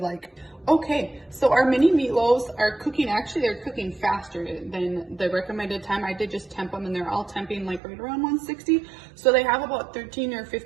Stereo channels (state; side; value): drops out; left; at 7.8 s